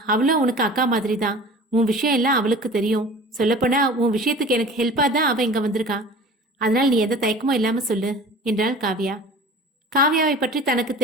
அவளும் உனக்கு அக்கா மாதிரி தான். உன் விஷயம் எல்லாம் அவளுக்கு தெரியும். சொல்லப்போனா உன் விஷயத்துக்கு எனக்கு ஹெல்ப்பா தான் அவ இங்க வந்திருக்கா. அதனால் நீ எந்த தயக்கமும் இல்லாம சொல்லு என்றாள் காவ்யா. காவ்யாவை பற்றி தனக்கு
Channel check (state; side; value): normal; both; correlation 0.41